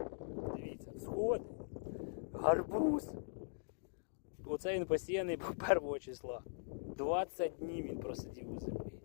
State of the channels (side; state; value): right; silent; digital silence